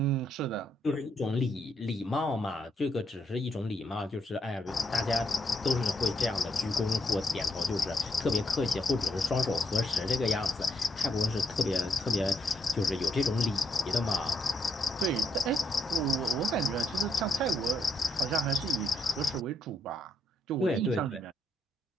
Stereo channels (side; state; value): both; normal; correlation 0.77